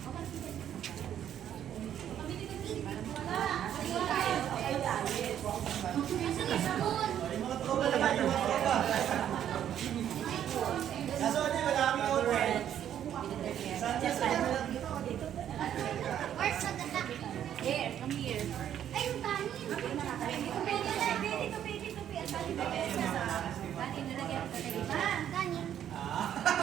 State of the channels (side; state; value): left; quieter; 10.2 dB